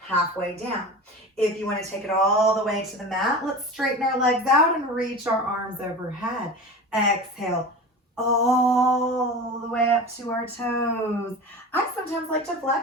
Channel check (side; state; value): both; normal; correlation 0.31